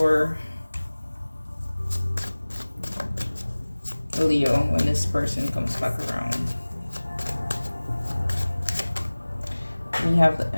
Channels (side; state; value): both; inverted; correlation -1.00